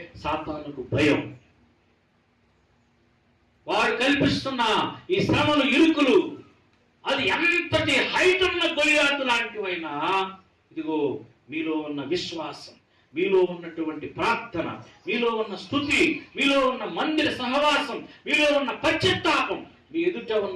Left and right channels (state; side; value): identical; both; correlation 1.00